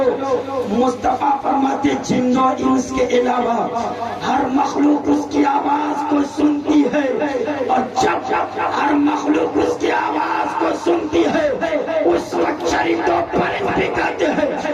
مصطفیٰ فرماتے جن و انس کے علاوہ ہر مخلوق اس کی آواز کو سنتی ہے، اور جب ہر مخلوق اس کی آواز کو سنتی ہے اس وقت شریف تو پرند بھی کہتے ہیں،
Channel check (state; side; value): identical; both; correlation 1.00